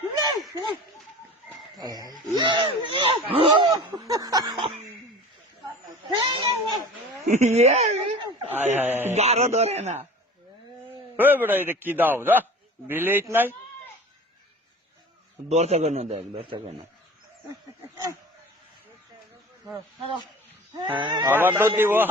গারো ধরে না বেটা এটা কি দাও যা বিলেট নাই দরজা কেন দেখ দরজা কেন আবার তো দিব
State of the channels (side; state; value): both; normal; correlation 0.39